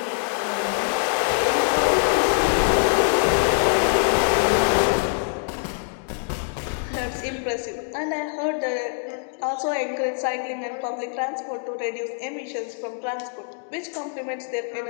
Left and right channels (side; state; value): right; silent; 63 dB below the other